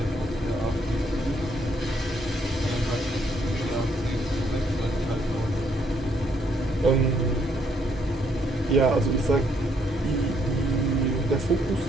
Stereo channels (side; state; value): both; normal; correlation 0.71